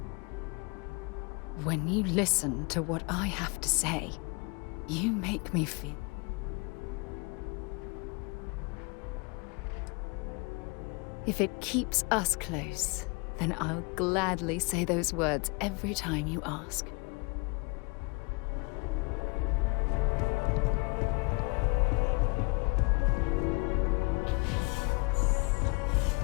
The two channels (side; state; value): right; quieter; 30.2 dB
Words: When you listen to what I have to say, you make me feel... If it keeps us close, then I'll gladly say those words every time you ask.